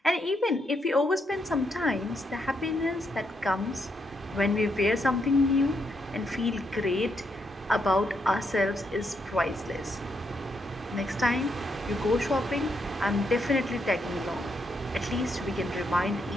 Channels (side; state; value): both; normal; correlation 0.78